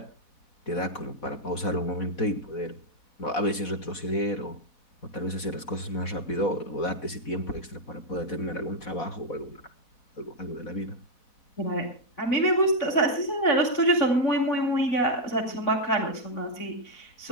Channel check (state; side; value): late; right; 4.1 ms